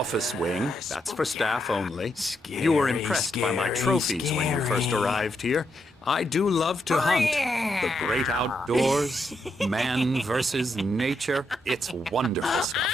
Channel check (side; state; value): both; normal; correlation 0.81